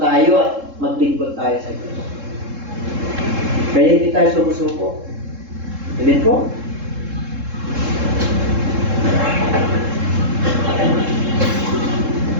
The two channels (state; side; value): late; left; 3.7 ms